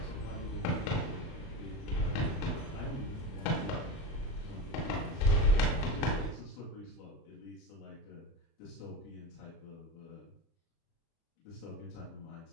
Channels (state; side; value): late; right; 30 ms